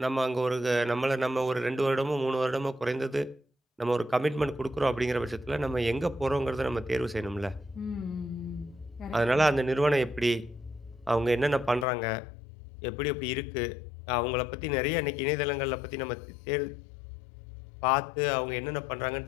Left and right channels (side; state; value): right; drops out; at 11.9 s